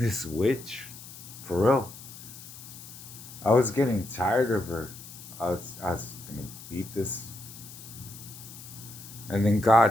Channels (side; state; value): left; noise; hiss, 15 dB below the sound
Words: witch, for real. I was getting tired of her. I was gonna beat this, and then